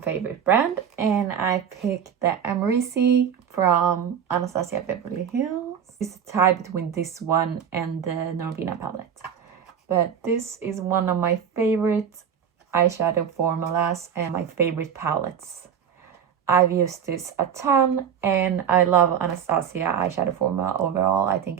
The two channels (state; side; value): quieter; left; 8.1 dB